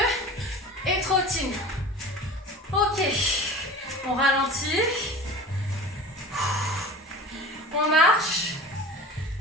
et trottine. Ok, on ralentit. On marche.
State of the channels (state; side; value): normal; both; correlation 0.38